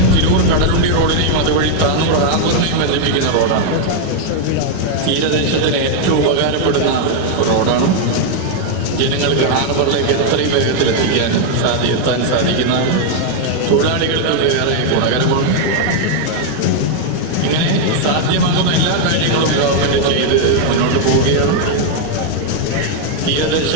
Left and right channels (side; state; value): both; different; correlation 0.00